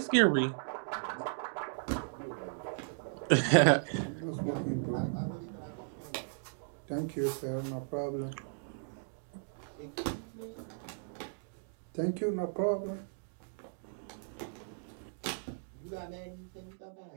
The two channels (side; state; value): left; silent; digital silence